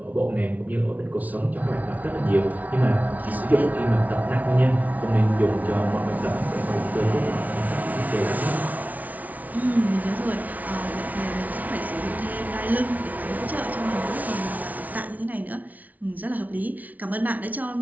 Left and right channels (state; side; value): late; left; 0.073 ms